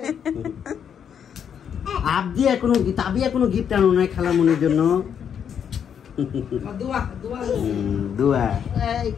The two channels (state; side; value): quieter; right; 8.1 dB